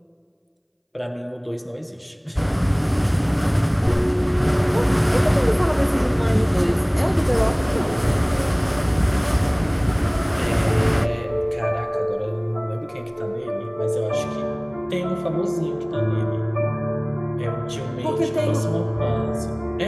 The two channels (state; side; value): identical; both; correlation 1.00